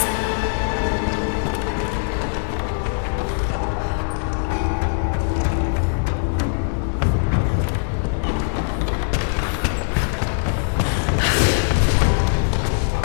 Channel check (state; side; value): silent; right; digital silence